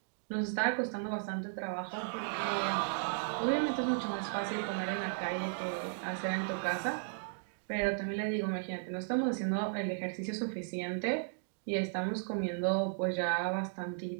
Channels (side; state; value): left; silent; digital silence